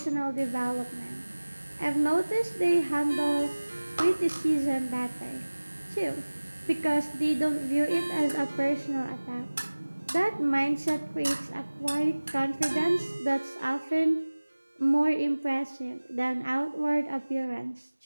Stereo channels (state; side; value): inverted; both; correlation -1.00